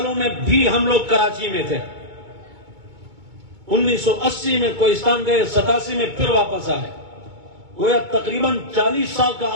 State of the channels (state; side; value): late; left; 2.2 ms